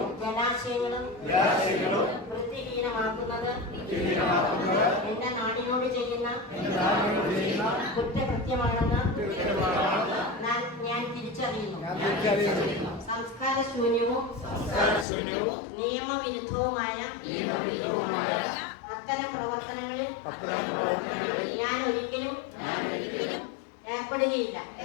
ജലാശയങ്ങളും വൃത്തിഹീനമാക്കുന്നത് എന്റെ നാടിനോട് ചെയ്യുന്ന കുറ്റകൃത്യമാണെന്ന് ഞാൻ തിരിച്ചറിയുന്നു. സംസ്കാര ശൂന്യവും നിയമവിരുദ്ധവുമായ അത്തരം പ്രവർത്തനങ്ങളിൽ ഞാൻ ഒരിക്കലും ഏർപ്പെടുകയില്ല.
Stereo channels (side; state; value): right; drops out; at 15.1 s